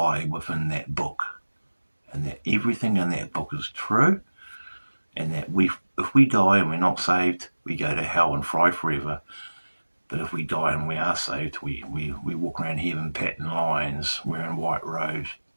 within that book, and that everything in that book is true, and that if we die and we're not saved, we go to hell and fry forever. But if we die and we are saved, we walk around heaven patting lions, wearing white robes,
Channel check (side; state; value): both; inverted; correlation -1.00